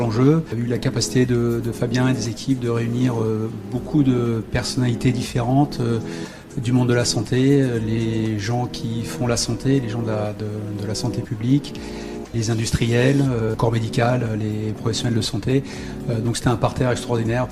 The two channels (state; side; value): identical; both; correlation 1.00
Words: Il y a eu la capacité de Fabien et des équipes de réunir beaucoup de personnalités différentes du monde de la santé, les gens qui font la santé, les gens de la santé publique, les industriels, corps médical, les professionnels de santé. Donc c'était un parterre extraordinaire